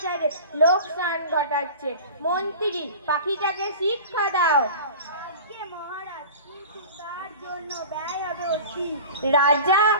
লোকসান ঘটাচ্ছে। মন্ত্রী, পাখিটাকে শিক্ষা দাও। আজ্ঞে মহারাজ, কিন্তু তার জন্য ব্যয় হবে অতি। রাজা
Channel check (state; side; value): inverted; both; correlation -0.37